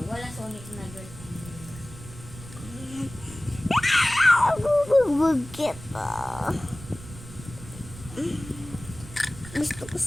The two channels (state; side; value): noise; right; rumble, 15 dB below the sound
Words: Wala Sonic na girl. Bubugbog kita. Gusto ko